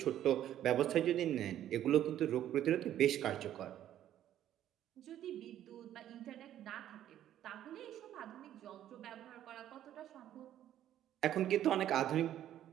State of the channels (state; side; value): quieter; left; 11.6 dB